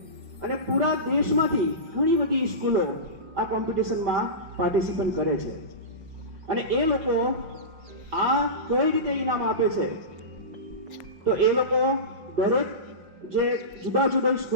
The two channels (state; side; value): late; left; 5.5 ms